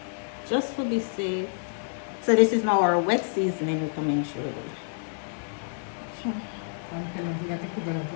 just to be safe. So this is now our wet seasoning we come in through.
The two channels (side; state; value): right; silent; digital silence